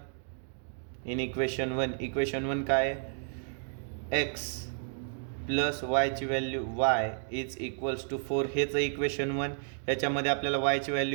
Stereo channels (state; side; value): silent; left; digital silence